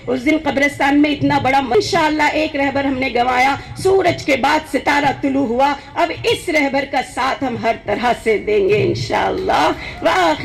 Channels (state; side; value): identical; both; correlation 1.00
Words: उस दिन कब्रिस्तान में इतना बड़ा, इंशाअल्लाह एक रहबर हमने गंवाया, सूरज के बाद सितारा तुलू हुआ, अब इस रहबर का साथ हम हर तरह से देंगे इंशाअल्लाह। व